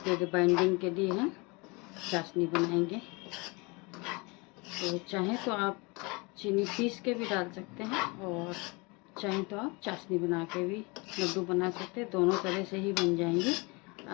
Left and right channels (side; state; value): right; quieter; 27.7 dB